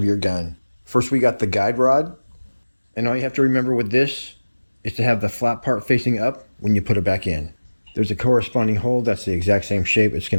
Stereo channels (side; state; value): both; inverted; correlation -1.00